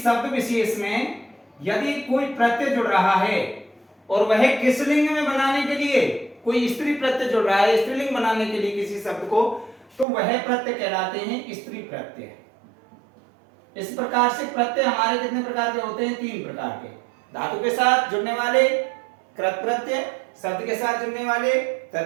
विशेष में यदि कोई प्रत्यय जुड़ रहा है और वह किस लिंग में बनाने के लिए, कोई स्त्री प्रत्यय जुड़ रहा है स्त्रीलिंग बनाने के लिए किसी शब्द को, तो वह प्रत्यय कहलाते हैं स्त्री प्रत्यय। इस प्रकार से प्रत्यय हमारे कितने प्रकार के होते हैं? 3 प्रकार के। धातु के साथ जुड़ने वाले कृत प्रत्यय, शब्द के साथ जुड़ने वाले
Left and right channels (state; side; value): drops out; left; at 10.1 s